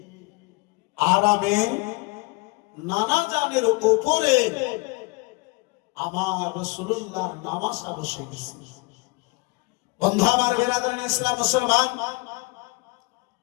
আরামে নানা জানের উপরে আমার রাসূলুল্লাহ নামাজ বসে গেছে। বন্ধু আমার বিরাদরান ইসলাম মুসলমান,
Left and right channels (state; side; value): quieter; right; 26.4 dB